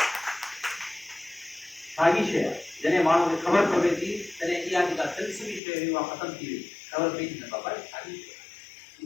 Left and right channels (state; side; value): drops out; right; at 5.6 s